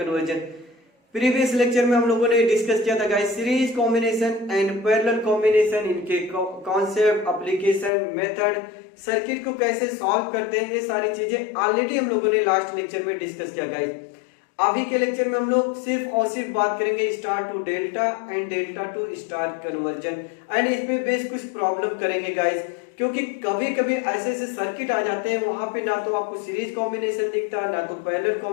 Previous lecture में हम लोगों ने डिस्कस किया था guys series combination and parallel combination, इनके कॉन्सेप्ट, एप्लीकेशन, मेथड, सर्किट को कैसे सॉल्व करते हैं, ये सारी चीजें ऑलरेडी हम लोगों ने लास्ट लेक्चर में डिस्कस किया गाइस। अभी के लेक्चर में हम लोग सिर्फ और सिर्फ बात करेंगे star to delta and delta to star conversion and इस पे बेस कुछ प्रॉब्लम करेंगे गाइस, क्योंकि कभी कभी ऐसे ऐसे सर्किट आ जाते हैं वहां पे ना तो आपको सीरीज कॉम्बिनेशन दिखता, ना तो पैरेलल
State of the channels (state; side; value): drops out; right; at 7.9 s